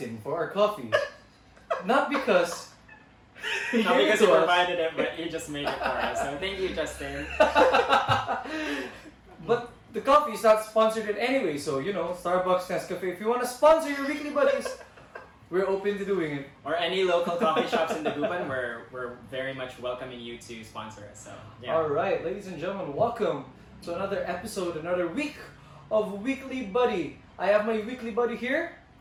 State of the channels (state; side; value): identical; both; correlation 1.00